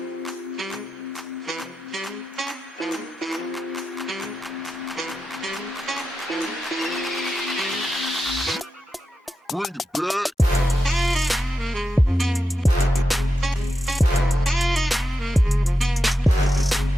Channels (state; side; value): normal; both; correlation 0.89